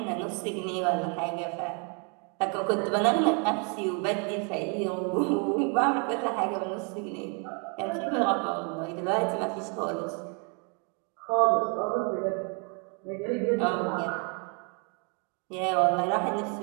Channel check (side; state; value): left; quieter; 36.5 dB